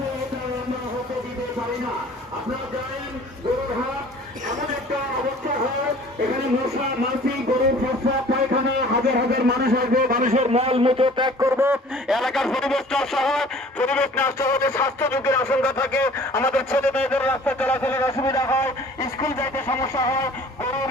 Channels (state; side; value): normal; both; correlation 0.49